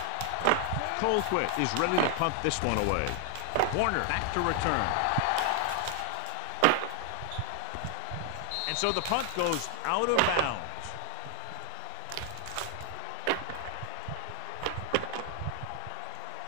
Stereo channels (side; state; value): both; different; correlation 0.00